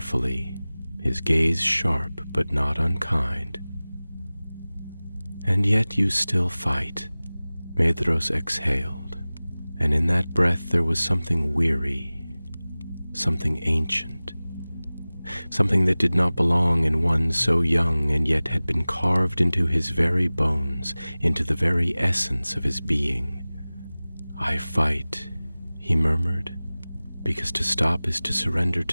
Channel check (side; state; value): both; inverted; correlation -0.99